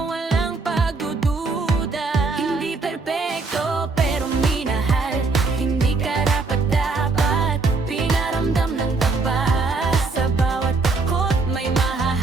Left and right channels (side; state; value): left; quieter; 3.9 dB